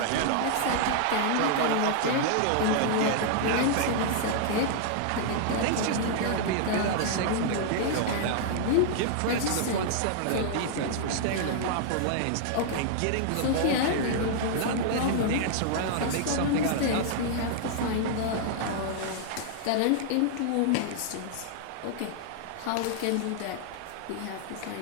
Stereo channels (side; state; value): both; different; correlation -0.01